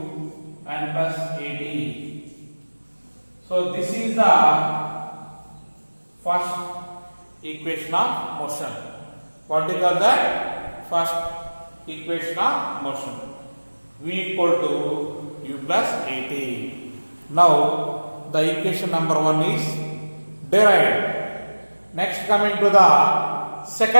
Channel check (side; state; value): both; inverted; correlation -1.00